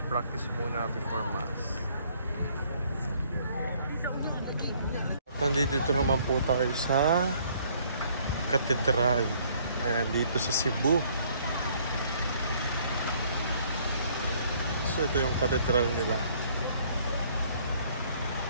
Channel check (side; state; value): both; inverted; correlation -0.62